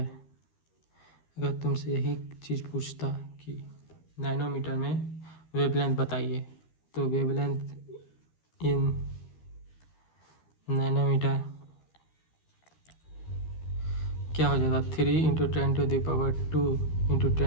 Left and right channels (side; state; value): right; late; 13 ms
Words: अगर तुमसे यही चीज़ पूछता कि नैनोमीटर में वेवलेंथ बताइए, तो वेवलेंथ इन नैनोमीटर क्या हो जाता, 3 × 10⁻2 ×